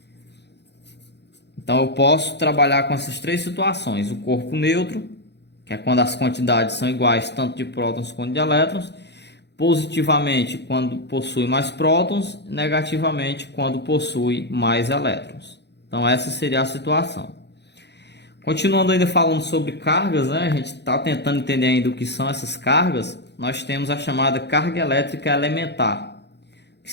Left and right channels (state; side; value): late; right; 0.50 ms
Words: Então eu posso trabalhar com essas três situações: o corpo neutro, que é quando as quantidades são iguais tanto de prótons quanto de elétrons, positivamente quando possui mais prótons, negativamente quando possui mais elétrons. Então essa seria a situação. Continuando ainda falando sobre cargas, né? A gente está tentando entender ainda o que são essas cargas. Nós temos a chamada carga elétrica elementar. O que